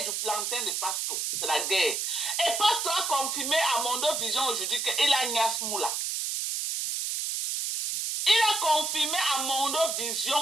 du plantain de Pasto. C'est la guerre. Et Pasto a confirmé à Mondo Vision aujourd'hui qu'il a Nias Moula. Il a confirmé à Mondo Vision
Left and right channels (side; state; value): right; noise; hiss, 1 dB below the sound